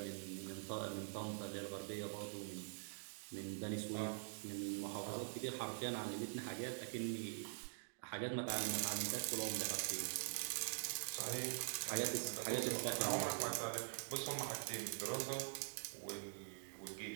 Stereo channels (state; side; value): silent; left; digital silence